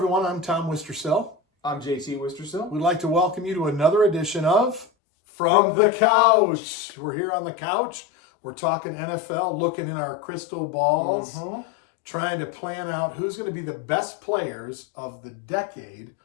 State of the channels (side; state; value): right; drops out; at 4.9 s